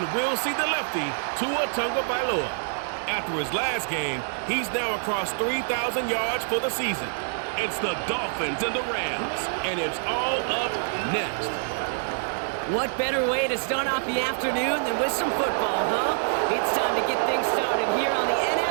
we'll see the lefty, Tua Tagovailoa. After his last game, he's now across 3,000 yards for the season. It's the Dolphins and the Rams, and it's all up next. What better way to start off the afternoon than with some football, huh? It's time to get things started here on the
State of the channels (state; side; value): silent; left; digital silence